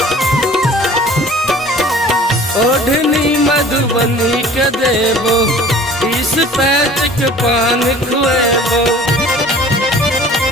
ओढ़नी मधुबनी के देबो 20 पैच के पान खुएबो।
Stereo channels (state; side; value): normal; both; correlation 0.48